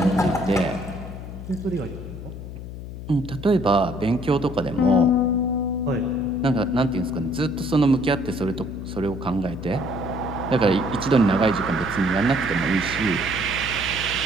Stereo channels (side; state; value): left; noise; hum, 10 dB below the sound